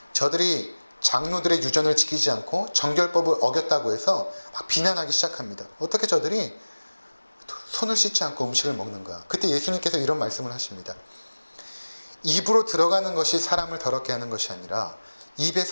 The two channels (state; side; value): inverted; both; correlation -1.00